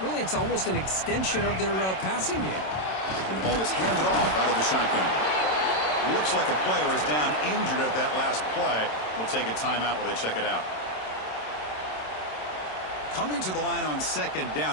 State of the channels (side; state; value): right; late; 27 ms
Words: Really, it's almost an extension of their passing game. And the ball is handed off out of the shotgun. Looks like a player is down injured at that last play. We'll take a timeout while they check it out. Coming to the line on second